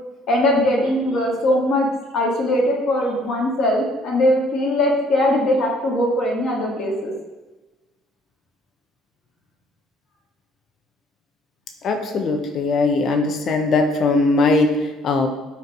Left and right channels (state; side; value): normal; both; correlation 0.61